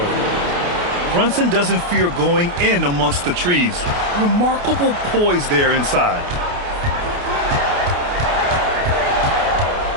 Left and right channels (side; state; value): left; late; 28 ms